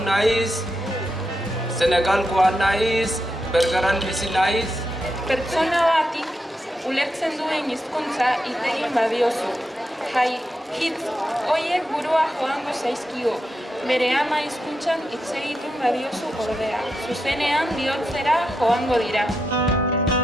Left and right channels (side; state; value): both; normal; correlation 0.85